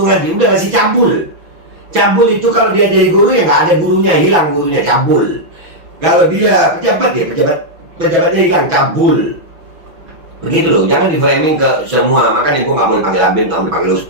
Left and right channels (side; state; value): left; late; 6.1 ms